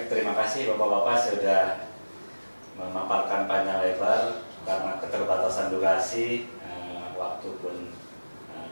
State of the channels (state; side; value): inverted; both; correlation -1.00